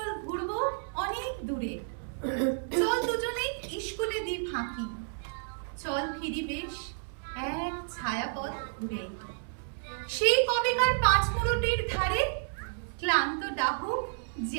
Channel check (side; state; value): left; silent; digital silence